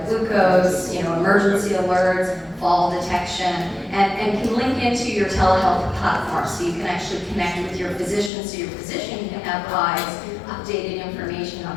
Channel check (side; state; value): right; drops out; at 8.3 s